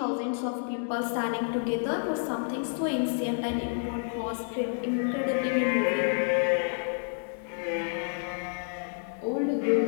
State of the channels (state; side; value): silent; right; digital silence